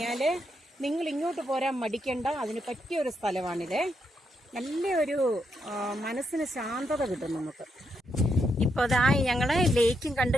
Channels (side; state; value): both; normal; correlation 0.80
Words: നിങ്ങൾ ഇങ്ങോട്ട് പോരാൻ മടിക്കണ്ട. അതിന് പറ്റിയൊരു സ്ഥലമാണിത്. നല്ലൊരു മനസ്സിന് ശാന്തത കിട്ടും നമുക്ക്. ഇപ്പൊ അതാ ഞങ്ങള് ലേക്കും കണ്ടു